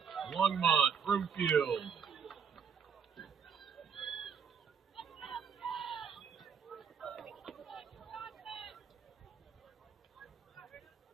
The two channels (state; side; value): quieter; left; 6.7 dB